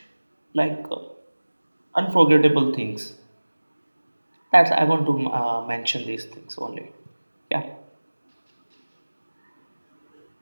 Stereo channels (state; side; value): inverted; both; correlation -1.00